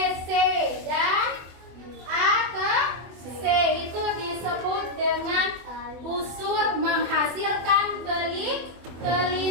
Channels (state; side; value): late; left; 24 ms